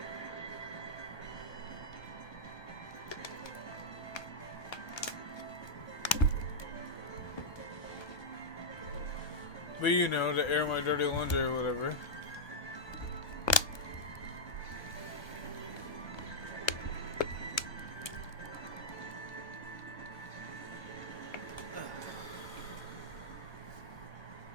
But you know, to air my dirty laundry or whatever.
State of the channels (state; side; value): late; right; 1.2 ms